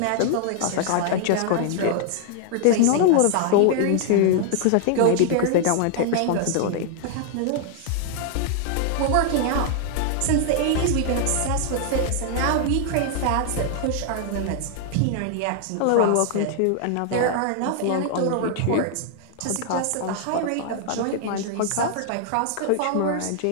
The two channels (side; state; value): both; different; correlation 0.00